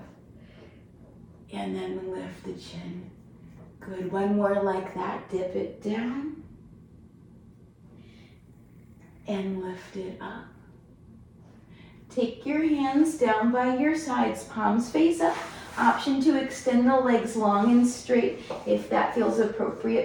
And then lift the chin. Good, 1 more like that. Dip it down. And lift it up. Take your hands down by your sides, palms face up. Option to extend the legs long and straight if that feels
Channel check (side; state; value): both; identical; correlation 1.00